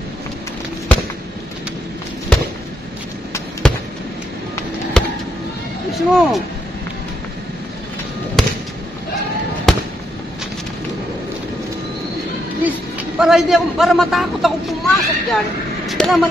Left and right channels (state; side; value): normal; both; correlation 0.78